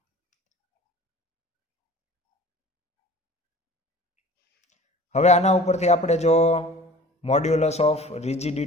હવે આના ઉપરથી આપણે જો મોડ્યુલસ ઓફ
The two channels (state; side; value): normal; both; correlation 0.44